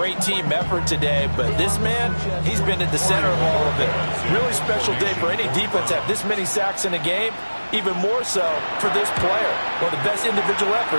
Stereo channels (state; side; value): inverted; both; correlation -1.00